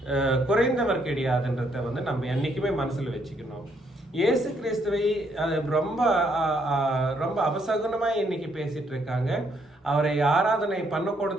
குறைந்தவர் கிடையாதுன்றத வந்து நம்ம என்னைக்குமே மனசுல வச்சுக்கணும். இயேசு கிறிஸ்துவை ரொம்ப ரொம்ப அபசகுனமா இன்னைக்கு பேசிட்டு இருக்காங்க. அவரை ஆராதனை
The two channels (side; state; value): both; normal; correlation 0.72